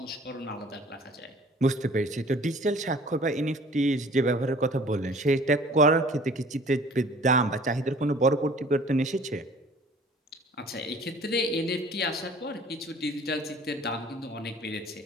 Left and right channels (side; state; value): both; normal; correlation 0.50